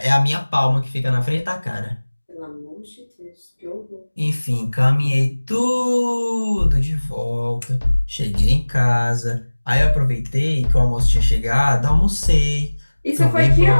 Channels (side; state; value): both; inverted; correlation -1.00